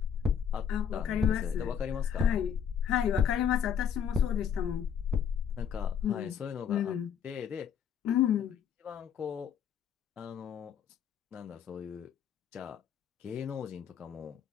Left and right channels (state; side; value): quieter; right; 7.9 dB